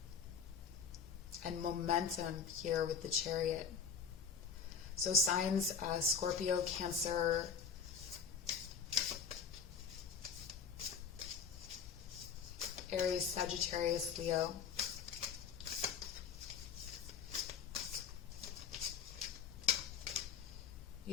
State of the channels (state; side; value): quieter; right; 6.4 dB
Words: And momentum here with the Chariot. So signs, Scorpio, Cancer, Aries, Sagittarius, Leo.